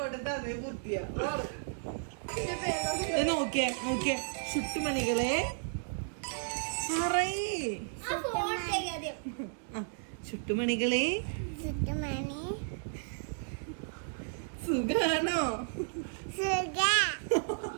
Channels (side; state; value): left; silent; digital silence